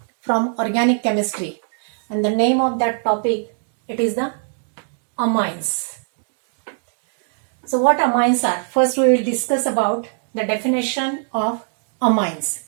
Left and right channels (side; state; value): left; silent; 59 dB below the other